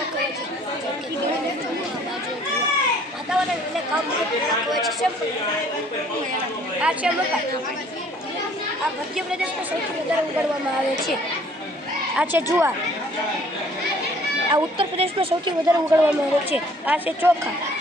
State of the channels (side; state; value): both; normal; correlation 0.57